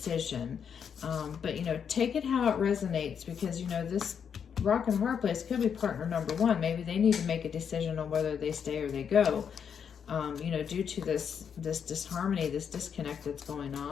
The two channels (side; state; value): right; quieter; 7.4 dB